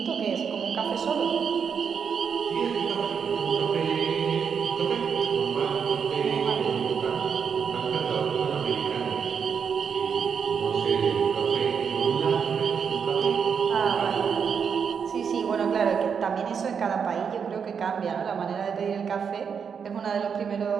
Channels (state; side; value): quieter; left; 6.7 dB